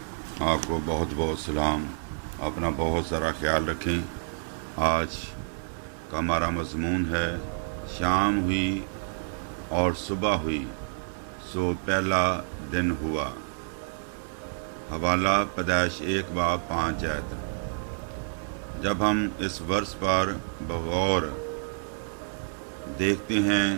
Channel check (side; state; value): left; silent; digital silence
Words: आपको बहुत बहुत सलाम। अपना बहुत सारा ख्याल रखें। आज का हमारा मज़मून है शाम हुई और सुबह हुई सो पहला दिन हुआ। हवाला पैदाइश 1:5 आयत। जब हम इस वर्ष पर बगौर देखते हैं,